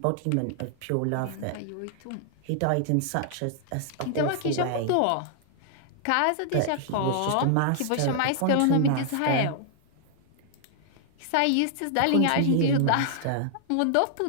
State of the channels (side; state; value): both; different; correlation 0.00